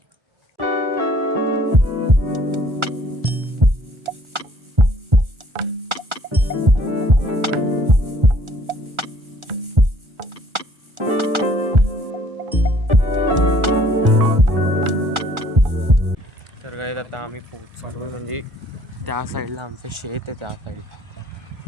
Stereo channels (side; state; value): left; late; 1.4 ms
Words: तर गाईस आता आम्ही पोहोचलो म्हणजे त्या साईडला आमचं शेत आहे त्या साईडला.